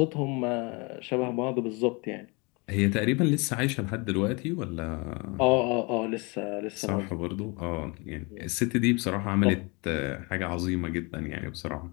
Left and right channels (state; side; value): quieter; right; 29.1 dB